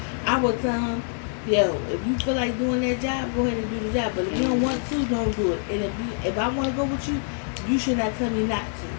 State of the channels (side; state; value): right; silent; digital silence